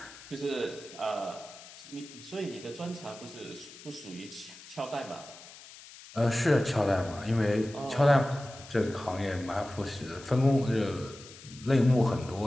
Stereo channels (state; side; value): noise; left; hiss, 18 dB below the sound